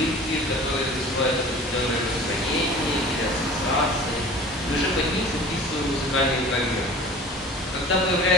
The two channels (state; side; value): normal; both; correlation 0.42